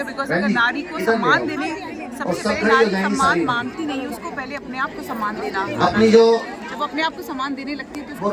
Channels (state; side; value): identical; both; correlation 1.00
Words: बिकॉज बहन अगर जी, नारी को इधर सम्मान ले आओ। देने, और सबसे सब पहले खड़े हो नारी जाएंगे सम्मान सारी। मांगती नहीं, उसको पहले अपने आप को सम्मान देना। अपनी जो जब अपने आप को सम्मान देने लगती है तो वो